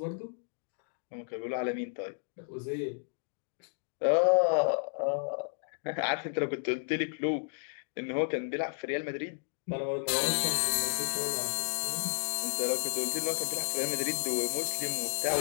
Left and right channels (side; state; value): right; silent; digital silence